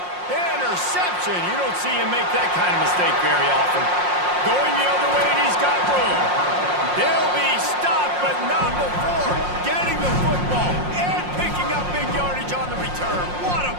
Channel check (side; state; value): left; late; 5.6 ms